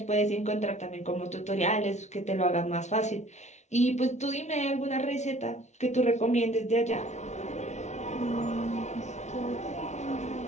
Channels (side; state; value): right; late; 0.33 ms